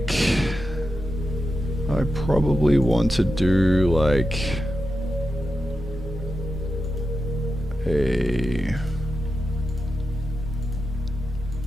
I probably want to do like a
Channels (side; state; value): both; normal; correlation 0.90